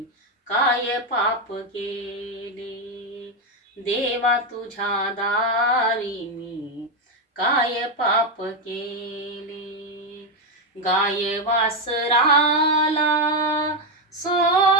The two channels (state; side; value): normal; both; correlation 0.07